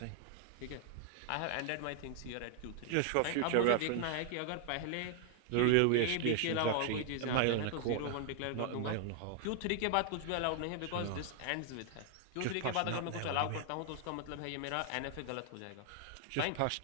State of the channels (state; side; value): different; both; correlation 0.00